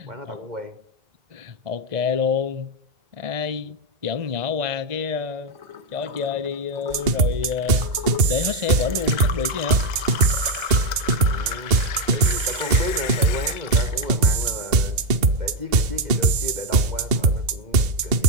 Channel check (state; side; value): late; left; 2.0 ms